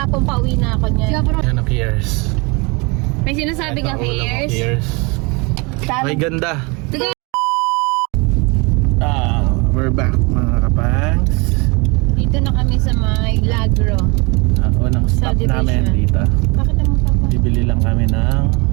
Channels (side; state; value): left; quieter; 28.6 dB